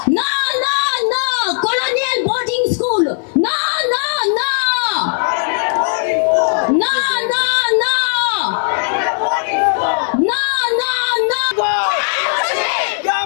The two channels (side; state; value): right; silent; 56 dB below the other